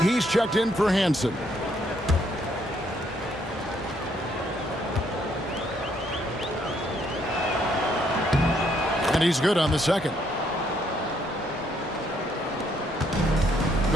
he's checked in for Hansen. And he's good on the second.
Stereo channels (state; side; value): normal; both; correlation 0.70